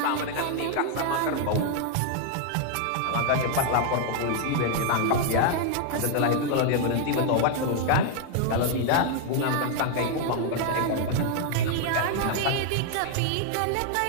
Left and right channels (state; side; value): different; both; correlation 0.00